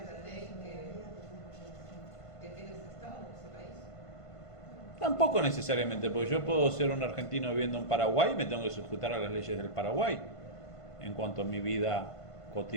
la ley que tiene ese Estado, ese país? Tampoco necesariamente, porque yo puedo ser un argentino viviendo en Paraguay y me tengo que sujetar a las leyes del Paraguay en cuanto a mi vida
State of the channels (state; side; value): late; right; 1.5 ms